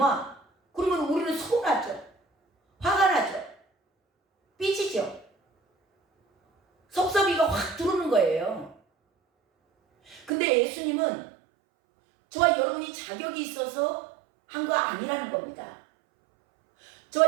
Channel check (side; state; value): left; drops out; at 10.3 s